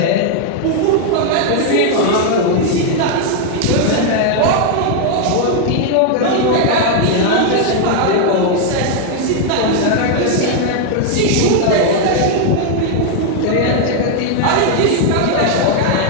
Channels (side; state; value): both; different; correlation 0.00